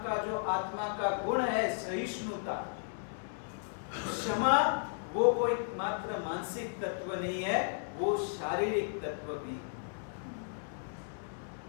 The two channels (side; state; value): right; silent; digital silence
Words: जो आत्मा का गुण है, सहिष्णुता। क्षमा वो कोई मात्र मानसिक तत्व नहीं है, वो शारीरिक तत्व भी है।